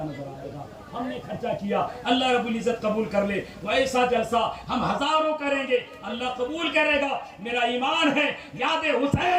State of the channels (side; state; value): both; identical; correlation 1.00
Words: नजर आएगा। हमने खर्चा किया, अल्लाह रब्बुल इज्जत कबूल कर ले। वैसा जलसा हम हजारों करेंगे, अल्लाह कबूल करेगा। मेरा ईमान है, याद